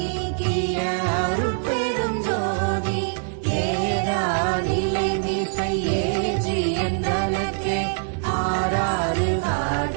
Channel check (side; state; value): left; silent; 63 dB below the other